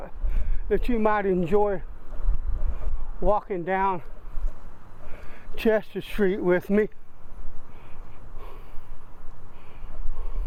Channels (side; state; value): both; identical; correlation 1.00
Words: that you might enjoy walking down Chester Street with me.